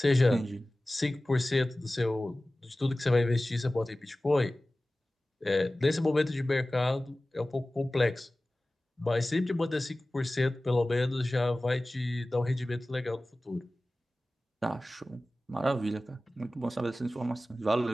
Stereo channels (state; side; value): normal; both; correlation 0.97